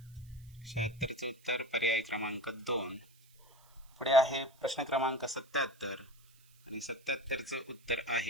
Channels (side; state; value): right; noise; hiss, 29 dB below the sound